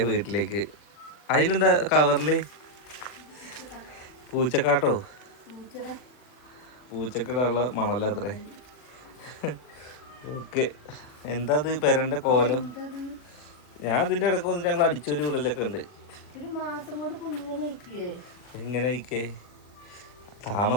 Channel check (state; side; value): late; right; 40 ms